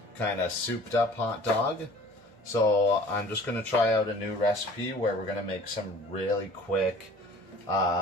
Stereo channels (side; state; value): both; normal; correlation 0.49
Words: kind of souped up hot dog. So I'm just gonna try out a new recipe where we're gonna make some really quick